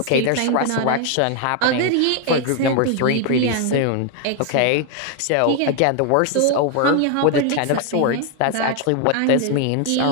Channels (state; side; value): different; both; correlation 0.00